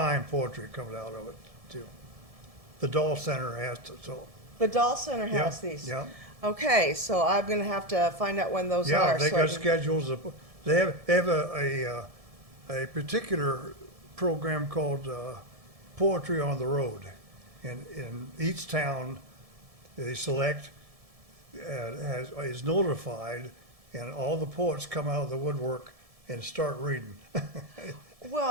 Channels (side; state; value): left; late; 1.7 ms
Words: poetry coming out of it, too. The Dahl Center has to, so. the Dahl Center Yeah, has these. Yeah, Okay, so I'm going to have to find out when those yeah, are. they so I got can- schedules. They have a particular program called Poetry on the Road. And in each town, they select, is notified, and all the poets come out of the woodwork and start reading.